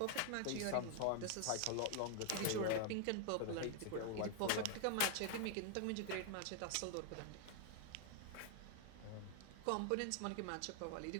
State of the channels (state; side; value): different; both; correlation 0.00